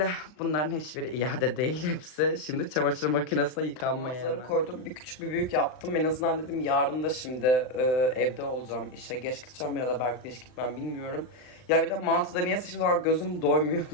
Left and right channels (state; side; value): late; right; 39 ms